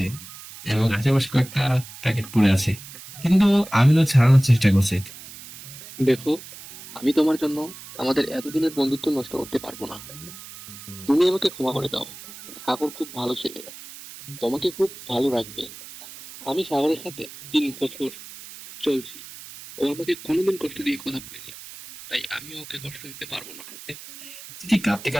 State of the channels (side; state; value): right; noise; hiss, 15 dB below the sound